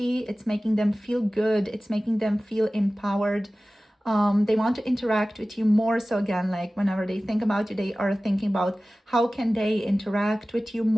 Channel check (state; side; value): normal; both; correlation 0.97